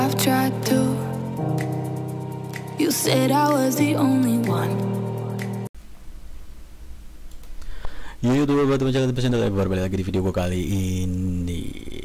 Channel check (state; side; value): identical; both; correlation 1.00